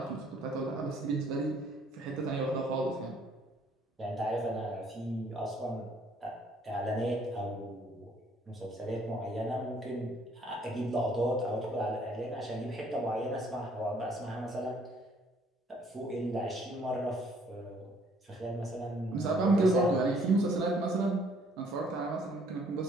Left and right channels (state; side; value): normal; both; correlation 0.62